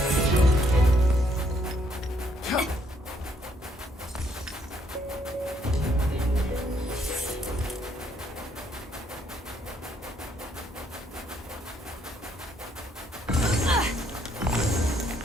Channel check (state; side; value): normal; both; correlation 0.70